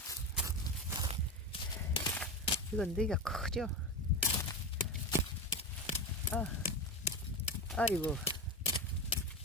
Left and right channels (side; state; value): both; normal; correlation 0.20